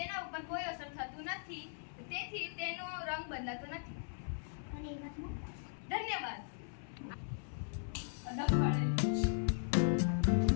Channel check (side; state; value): right; silent; 52 dB below the other